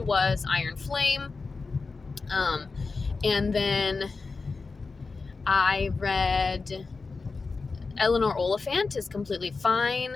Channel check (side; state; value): right; quieter; 4.2 dB